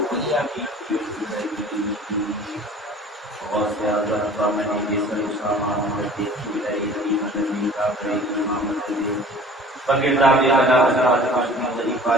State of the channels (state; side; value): normal; both; correlation 0.45